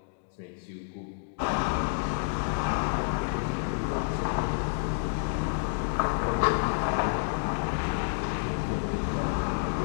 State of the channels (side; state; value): right; silent; digital silence